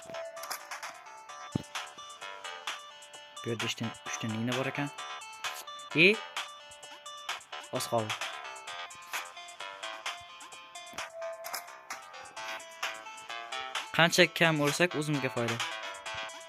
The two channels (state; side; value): identical; both; correlation 1.00